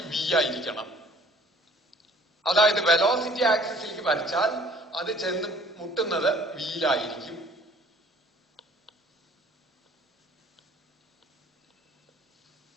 v ആയിരിക്കണം. അതായത് വെലോസിറ്റി ആക്സിസിലേക്ക് വരച്ചാൽ അത് ചെന്ന് മുട്ടുന്നത് വിയിലായിരിക്കും.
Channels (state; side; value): normal; both; correlation 0.54